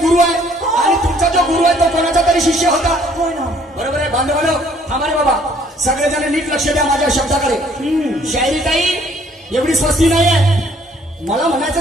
आहे आणि तुमचा जो गुरु आहे तो कोणाचा तरी शिष्य होता. होय ना. बरोबर आहे. बांधवानो थांबा रे बाबा, सगळेजण नीट लक्ष द्या माझ्या शब्दाकडे. शायरी काही एवढी स्वस्ती नाही आहे. मला म्हणायचं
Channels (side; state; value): both; normal; correlation 0.61